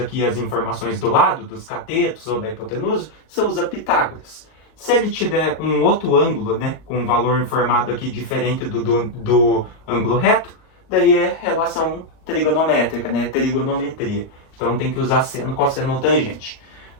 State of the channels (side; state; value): right; late; 38 ms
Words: as informações do lado, dos catetos ou da hipotenusa, você usa Pitágoras. Se ele te der um outro ângulo, né, com um valor informado aqui diferente do ângulo reto, daí é relação trigonométrica, né, trigonometria. Então tem que usar seno, cosseno, tangente.